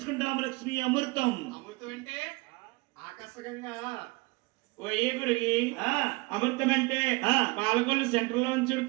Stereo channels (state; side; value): quieter; left; 24.5 dB